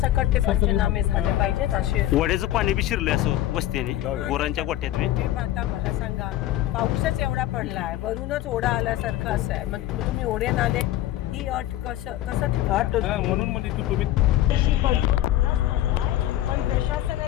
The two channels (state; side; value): quieter; right; 13.9 dB